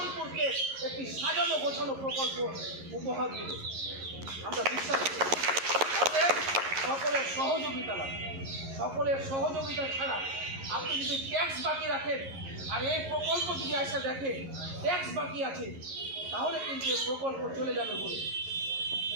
একটি সাজানো গোছানো প্রকল্প উপহার দেবে, আমরা বিশ্বাস করি। অতএব সকলের সহযোগিতা লাগে। সকলের সহযোগিতা ছাড়া আপনি যদি ট্যাক্স বাকি রাখেন আর এই প্রকল্প যদি এসে দেখে ট্যাক্স বাকি আছে, তাহলে কিন্তু এই প্রকল্প চলে যাবে বলে।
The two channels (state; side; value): late; left; 11 ms